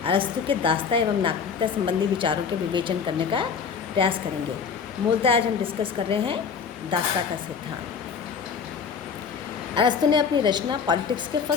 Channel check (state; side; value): quieter; right; 6.3 dB